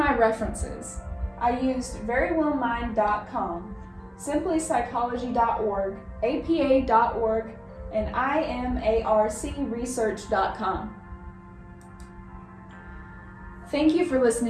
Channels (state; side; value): identical; both; correlation 1.00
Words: references. I used verywellmind.com, simplypsychology.org, apa.org, and imarcresearch.com. Thank you for